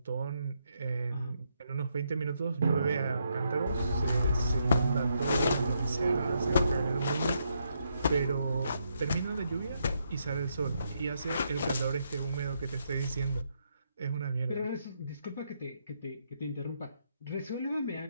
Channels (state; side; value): inverted; both; correlation -0.78